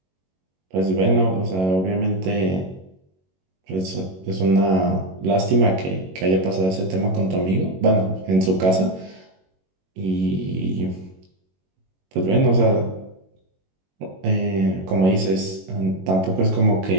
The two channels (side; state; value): left; late; 21 ms